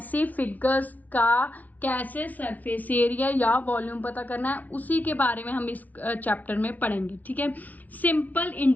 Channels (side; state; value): right; late; 0.076 ms